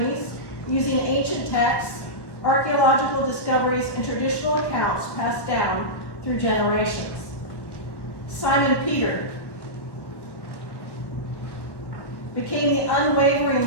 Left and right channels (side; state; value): right; late; 1.1 ms